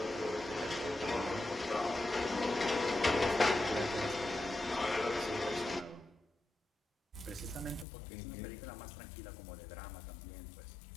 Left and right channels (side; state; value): right; drops out; at 7.9 s